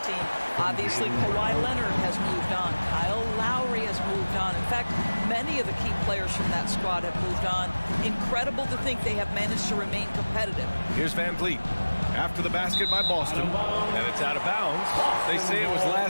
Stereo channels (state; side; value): inverted; both; correlation -1.00